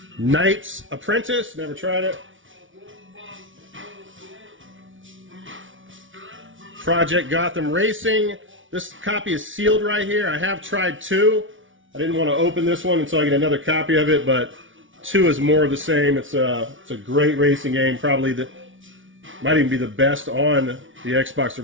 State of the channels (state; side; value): late; left; 0.56 ms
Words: Knight's Apprentice. Never tried it. Project Gotham Racing. This copy is sealed right here. I have tried 2. I didn't want to open this one until I get another copy of it, but 2 is more of the same. It's a great racing game. Probably might even be the best on the Xbox